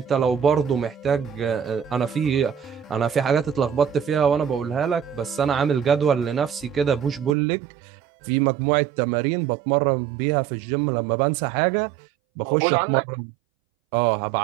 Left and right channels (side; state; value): left; drops out; at 7.4 s